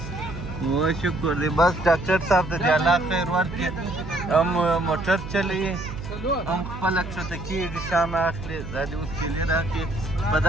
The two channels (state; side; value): noise; right; hum, 10 dB below the sound